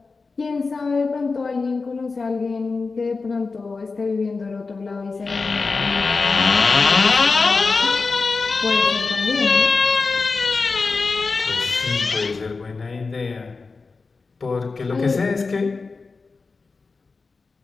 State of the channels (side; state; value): right; quieter; 4.2 dB